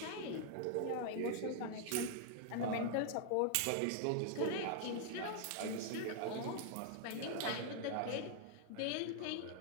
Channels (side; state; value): both; different; correlation 0.00